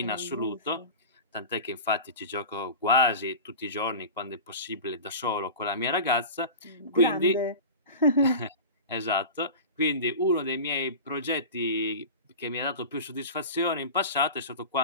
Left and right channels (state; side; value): inverted; both; correlation -0.32